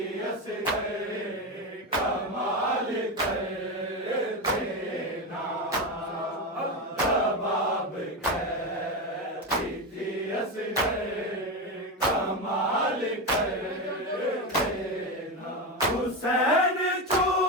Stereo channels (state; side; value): normal; both; correlation 0.15